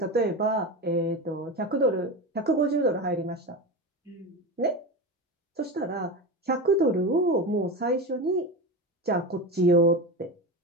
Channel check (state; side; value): normal; both; correlation 0.22